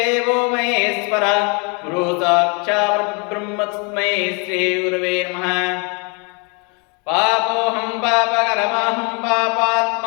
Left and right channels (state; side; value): quieter; right; 33.5 dB